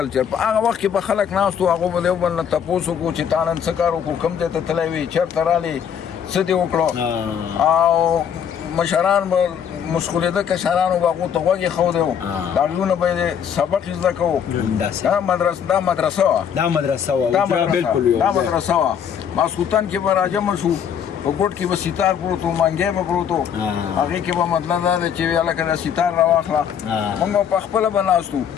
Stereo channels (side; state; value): right; quieter; 8.2 dB